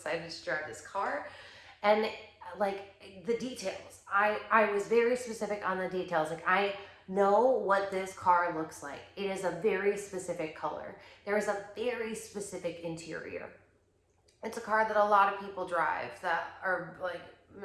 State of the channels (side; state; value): both; identical; correlation 1.00